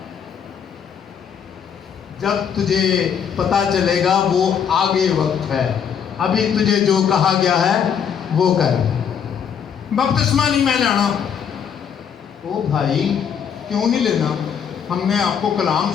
जब तुझे पता चलेगा वो आगे वक्त है। अभी तुझे जो कहा गया है वो कर। बपतिस्मा नहीं मैं लेना। ओ भाई, क्यों नहीं लेना? हमने आपको कलाम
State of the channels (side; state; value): right; quieter; 7.7 dB